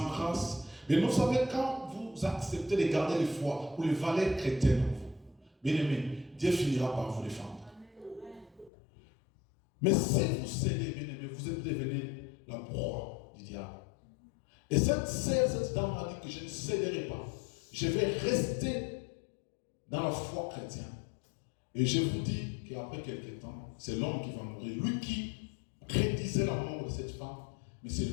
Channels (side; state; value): right; drops out; at 8.7 s